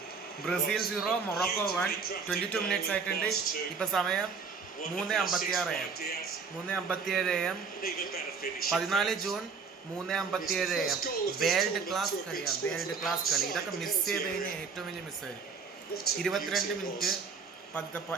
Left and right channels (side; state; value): left; quieter; 5.3 dB